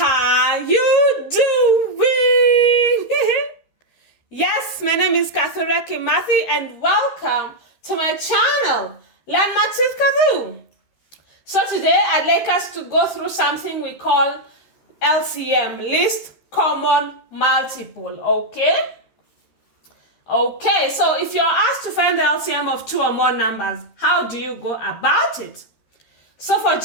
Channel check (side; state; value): right; late; 13 ms